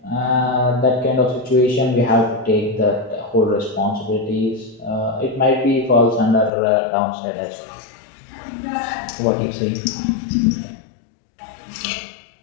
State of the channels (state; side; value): drops out; right; at 6.5 s